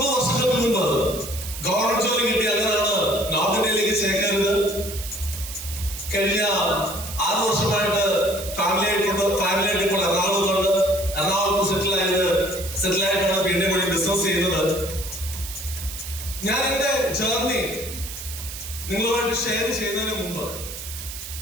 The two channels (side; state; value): right; noise; hiss, 10 dB below the sound